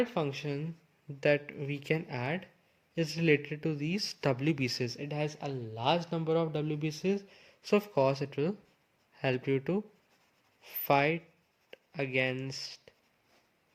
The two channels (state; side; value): identical; both; correlation 1.00